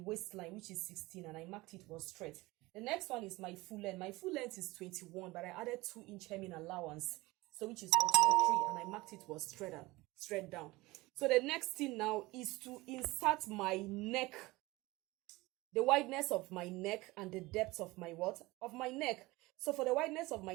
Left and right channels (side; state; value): left; quieter; 21.0 dB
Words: waistline, which is 16, and I marked it was straight. The next one is my full length. My full length is 21, but I added 2-inch hemming allowance, so which is 23, and I marked it was straight down. So the next thing now is to insert my neck, the wideness of my neck and the depth of my neck. So for the wideness of